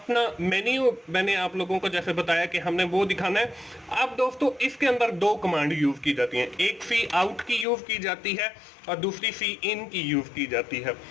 मेन्यू, मैंने आप लोगों को जैसे बताया कि हमने वो दिखाना है। अब दोस्तों इसके अंदर दो कमांड यूज की जाती हैं, एक सी आउट की यूज की जाती है और दूसरी सी इन की यूज की जाती है।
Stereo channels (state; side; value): drops out; right; at 7.7 s